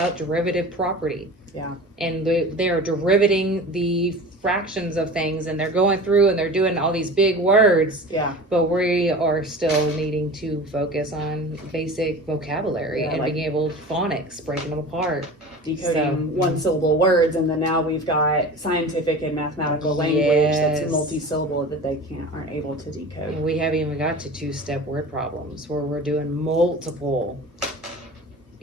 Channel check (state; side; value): normal; both; correlation 0.36